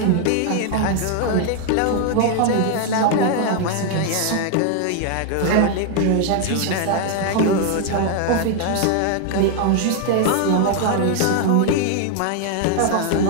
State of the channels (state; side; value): different; both; correlation 0.00